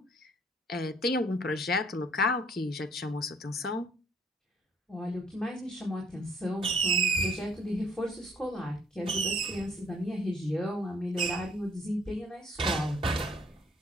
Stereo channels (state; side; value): normal; both; correlation 0.60